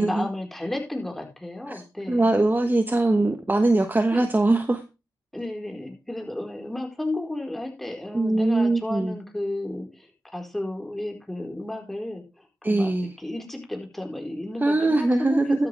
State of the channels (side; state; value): both; normal; correlation 0.95